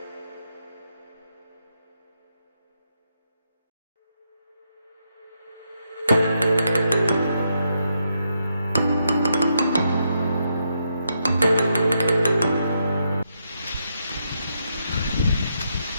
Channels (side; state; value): both; inverted; correlation -0.80